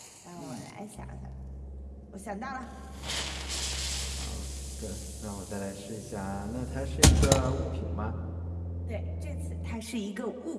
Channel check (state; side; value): identical; both; correlation 1.00